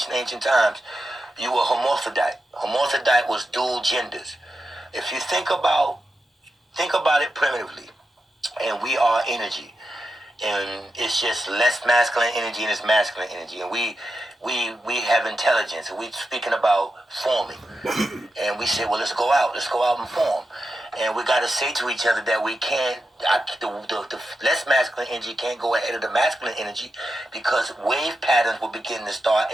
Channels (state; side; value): normal; both; correlation 0.89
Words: times, you were hermaphrodite. Hermaphrodite was dual genders. If you think about it primitively, and we are energy, and it's just less masculine energy and it's masculine energy, and we have intelligence, and we're speaking about forming, and we say, well, let's go out and form. And we got to say to each other that we can't, the less masculine energy can't go ahead of the masculine energy, because wave patterns will begin to start,